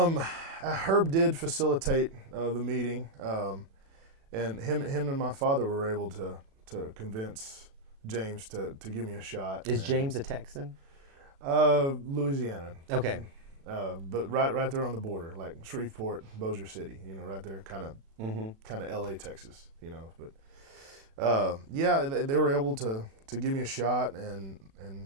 did facilitate the meeting. And him and my father were able to convince James to give me a shot. Is James a Texan? Louisiana. Okay. but right there on the border, like Shreveport, Bossier City, right there, kind of L.A., Texas, But yeah, they were able to give me a shot, and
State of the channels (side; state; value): left; late; 36 ms